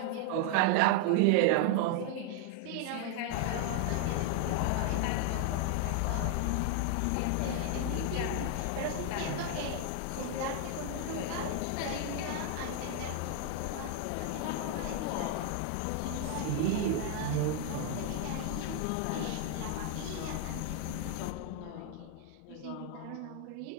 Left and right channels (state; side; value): different; both; correlation 0.00